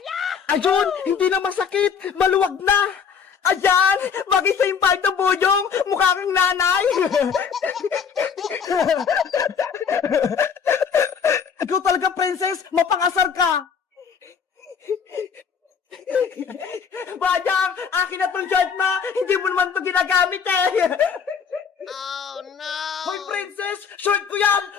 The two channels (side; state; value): right; quieter; 6.7 dB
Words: Ayun, hindi na masakit. Maluwag na. Ayan, bagay sa yung palda, Boyong. Mukha kang nanay. Ikaw talaga, princess. Mapangasar ka. Bayang, akin na tong shirt mo. Hindi mo naman ito ginagamit eh. Oh no! Hoy, princess! Short ko